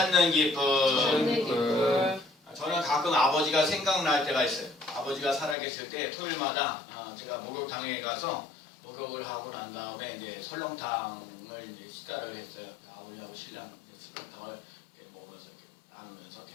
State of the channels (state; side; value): drops out; right; at 5.6 s